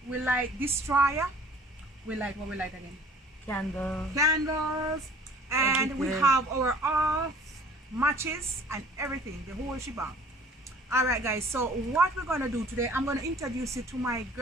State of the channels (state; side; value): normal; both; correlation 0.50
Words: we like destroyer. We like what we like again? Candles. And we have our off matches and everything, the whole shebang. All right guys, so what we're gonna do today, I'm gonna introduce you to my